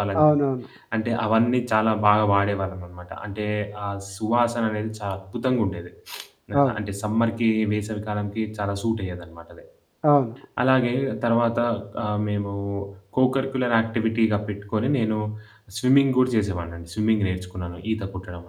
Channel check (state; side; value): identical; both; correlation 1.00